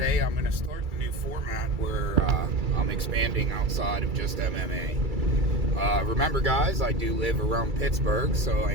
I'm going to start the new format where I'm expanding outside of just MMA. Remember guys, I do live around Pittsburgh, so I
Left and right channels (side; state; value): left; late; 2.3 ms